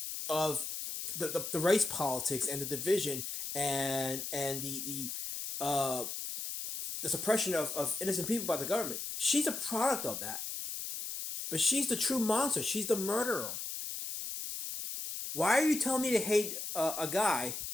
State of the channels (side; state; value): left; noise; hiss, 5 dB below the sound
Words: of the race politics and the division and the suppression of innocent people by the government. She's a product of that. But she's the true monster. She's the murderer. Why are you telling me to hate a guy